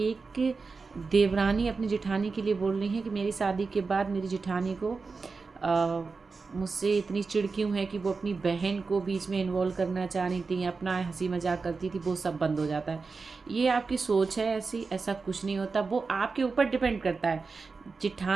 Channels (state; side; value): quieter; left; 4.4 dB